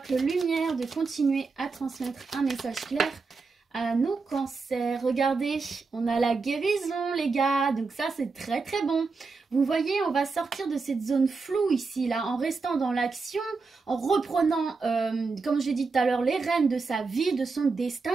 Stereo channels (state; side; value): quieter; left; 4.4 dB